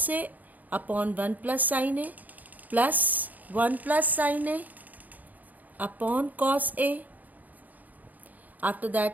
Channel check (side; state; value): left; late; 0.081 ms